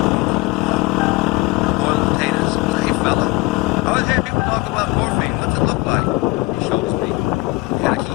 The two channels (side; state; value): right; quieter; 22.5 dB